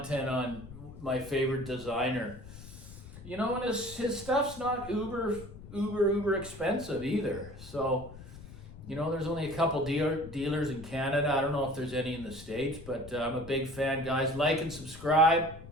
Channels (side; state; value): left; noise; rumble, 15 dB below the sound